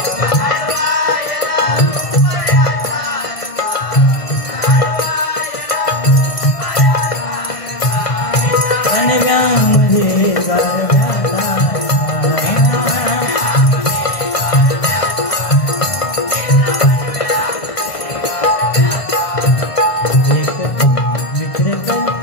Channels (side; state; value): right; late; 1.6 ms